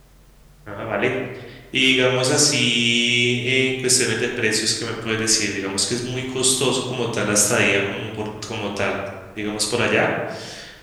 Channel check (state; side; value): identical; both; correlation 1.00